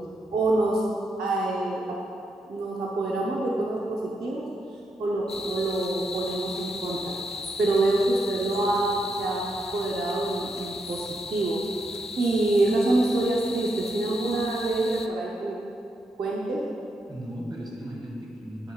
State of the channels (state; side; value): normal; both; correlation 0.81